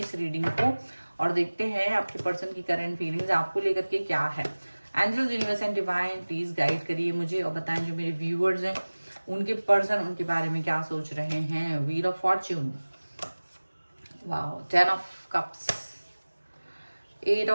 रीडिंग को और देखते हैं आपके पर्सन की करंट फीलिंग्स आपको लेकर के क्या है। Angels, universe and divine please guide करिए मुझे और बताएं जो मेरे व्यूअर्स हैं उनके पर्सन उनके बारे में क्या सोच रहे हैं। Wheel of fortune, wow, 10 of cups, 8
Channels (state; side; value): inverted; both; correlation -1.00